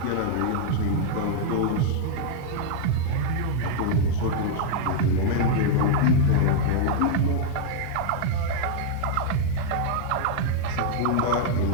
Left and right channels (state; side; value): different; both; correlation -0.01